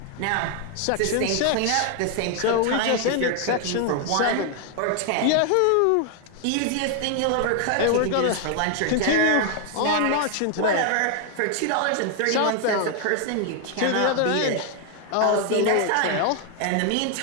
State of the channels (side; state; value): both; different; correlation 0.00